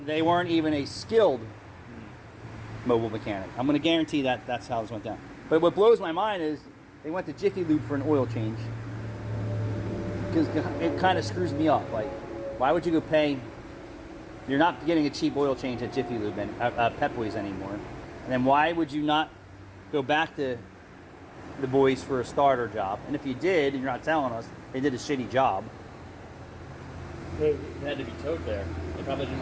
they weren't even a skilled mobile mechanic. I'm going to guarantee that that's how this went down. But what blows my mind is they went to Jiffy Lube for an oil change. Because it kind of screws me up. Like, why would you go pay? You're not getting a cheap oil change at Jiffy Lube and Pep Boys anymore. And then why would you not go back to the boys for a starter job? And if you did, and you're not telling us, they did a shitty job. It had to be towed there. They probably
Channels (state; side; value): identical; both; correlation 1.00